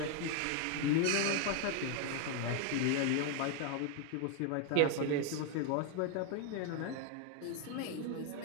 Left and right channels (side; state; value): both; different; correlation 0.00